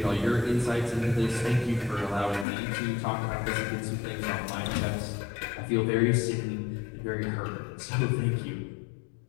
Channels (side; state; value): right; drops out; at 2.5 s